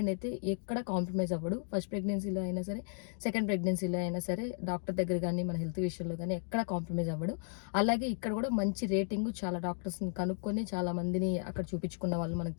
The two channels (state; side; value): silent; right; 55 dB below the other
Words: అయితే ఎక్కడ కాంప్రమైజ్ అవ్వడు. ఫస్ట్ ప్రెగ్నెన్సీలో అయినా సరే, సెకండ్ ప్రెగ్నెన్సీలో అయినా సరే, డాక్టర్ దగ్గర కానీ మన హెల్త్ విషయంలో కానీ ఎక్కడ కాంప్రమైజ్ అవ్వడు. అలాగే ఇక్కడ కూడా మంచి రేటింగ్, చాలా డాక్టర్స్ని కనుక్కొని, చాలా మందిని అక్కడ చూపించుకున్న వాళ్ళు, మనకు